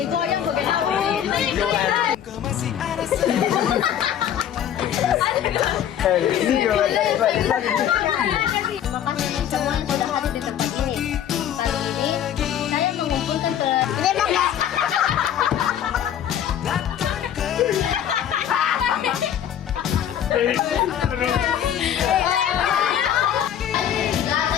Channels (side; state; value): right; quieter; 10.0 dB